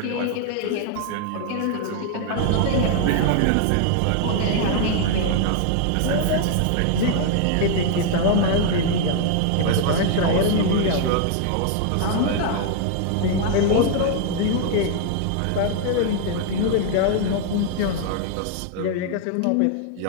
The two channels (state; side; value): different; both; correlation 0.00